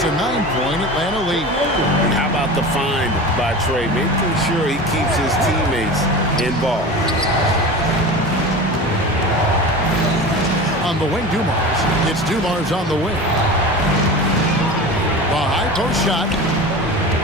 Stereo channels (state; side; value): normal; both; correlation 0.31